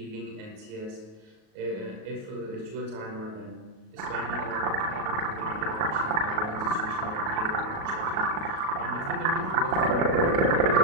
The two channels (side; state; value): left; late; 37 ms